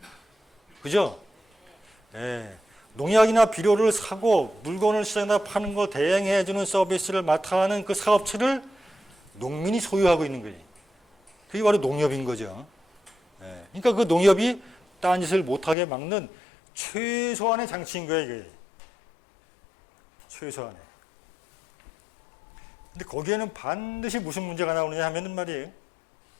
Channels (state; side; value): drops out; right; at 15.8 s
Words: 그죠? 예. 농약이나 비료를 사고 물건을 시장에다 파는 거 대행해주는 서비스를 맡아 하는 그 사업체를 농민이 소유하고 있는 거예요. 그게 바로 농협인 거죠. 예. 그러니까 그 농협이 딴짓을 못하게 막는 최소한의 장치인 거예요, 이게. 최소한의. 근데 거기에는 반드시 무슨 문제가 나오느냐 하면은 말이에요.